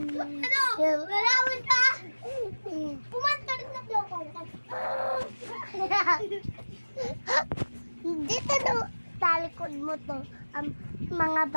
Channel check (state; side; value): inverted; both; correlation -1.00